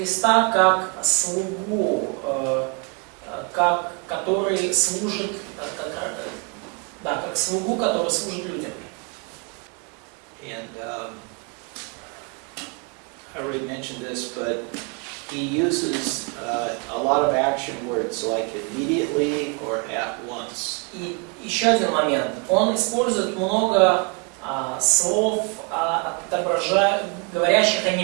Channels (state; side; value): quieter; left; 33.6 dB